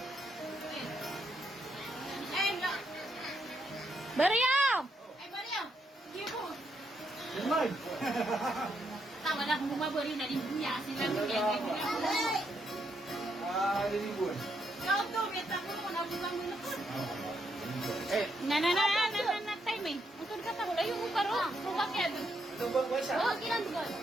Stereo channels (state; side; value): normal; both; correlation 0.77